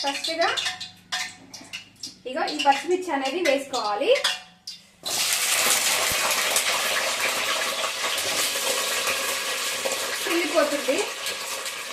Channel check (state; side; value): identical; both; correlation 1.00